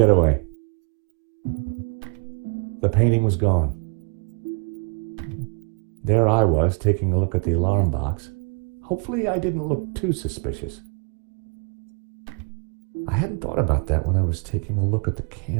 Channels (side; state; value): left; quieter; 37.5 dB